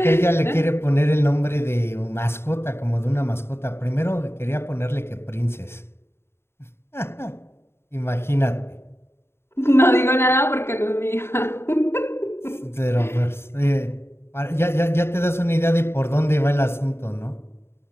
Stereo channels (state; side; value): late; right; 0.12 ms